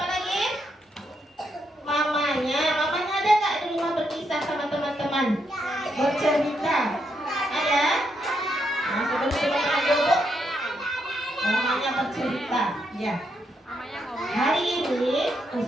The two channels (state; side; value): normal; both; correlation 0.79